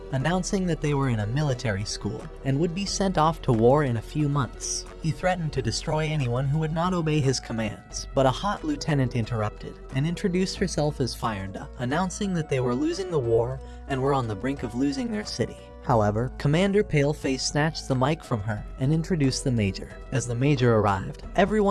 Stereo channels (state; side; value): identical; both; correlation 1.00